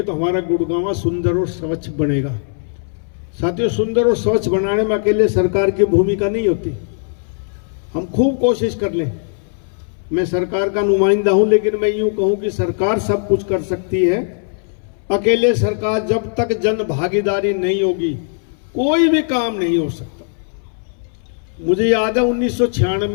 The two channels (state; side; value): silent; right; 66 dB below the other